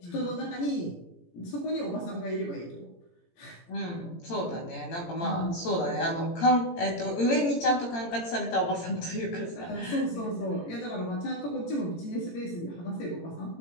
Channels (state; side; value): late; right; 17 ms